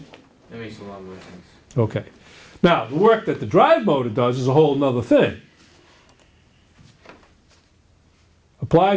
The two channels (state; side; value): identical; both; correlation 1.00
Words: That makes a lot more sense. Okay. Now, the work that the drive motor does is a whole nother thing.